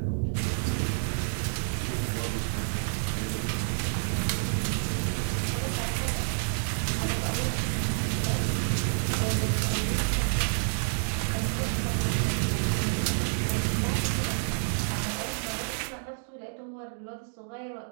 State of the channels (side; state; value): left; silent; digital silence